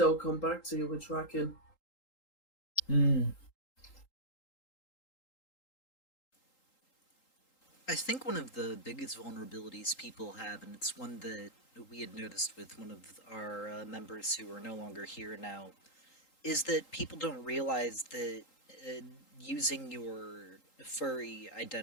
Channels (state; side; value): late; right; 3.8 ms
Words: come back to you with tracking. Mm. I think one of the biggest vulnerabilities people have, and it's one that we had noticed with one of our members who are no longer here now, is that people don't realize that uh, using your furry